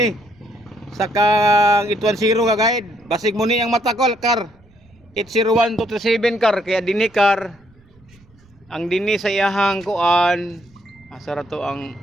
sa kang 810 nga guide basig mo ni ang matakol kar 801 237 kar kaya dinhi kar ang dinhi sa iyahang kuan asa ra to ang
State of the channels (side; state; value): right; noise; rumble, 29 dB below the sound